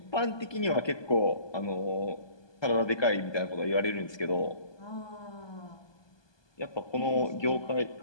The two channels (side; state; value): right; late; 1.2 ms